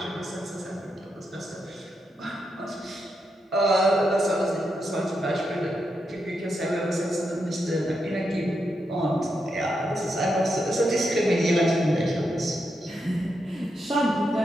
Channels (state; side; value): normal; both; correlation 0.84